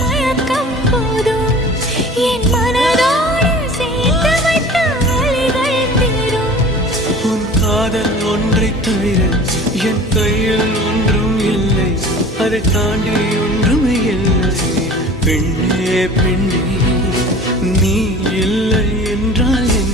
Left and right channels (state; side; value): normal; both; correlation 0.42